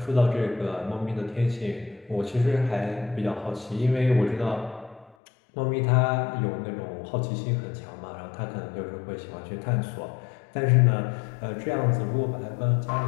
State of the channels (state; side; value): drops out; right; at 5.2 s